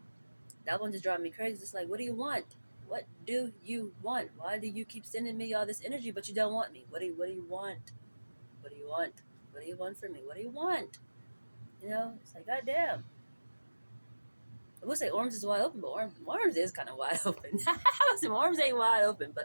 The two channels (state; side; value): inverted; both; correlation -1.00